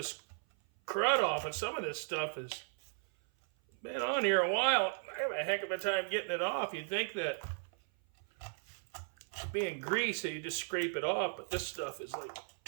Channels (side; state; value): left; silent; 54 dB below the other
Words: crud off, and some of this stuff has been on here a while. I have a heck of a time getting it off. You'd think that being greasy, you just scrape it off, but this stuff is like